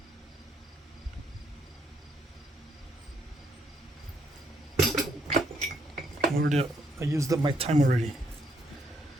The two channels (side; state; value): both; normal; correlation 0.73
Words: I used up my time already.